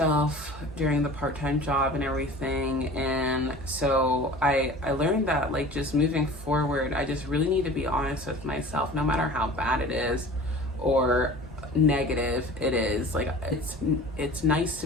during the part-time job and everything. And so I learned that like just moving forward, I just really need to be honest with myself, no matter how bad it is or negative it is. Like it's nice to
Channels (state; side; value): normal; both; correlation 0.41